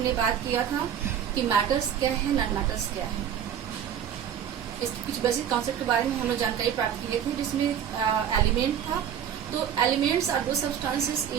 बात किया था कि मैटर्स क्या है, नॉन मैटर्स क्या है। इसके कुछ बेसिक कॉन्सेप्ट के बारे में हम लोग जानकारी प्राप्त किए थे, जिसमें एलिमेंट था। तो elements are those substances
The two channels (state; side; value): quieter; left; 9.1 dB